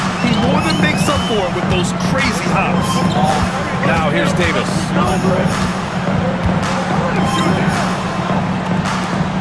He more than makes up for it with those crazy hops. Now here's Davis.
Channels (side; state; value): both; identical; correlation 1.00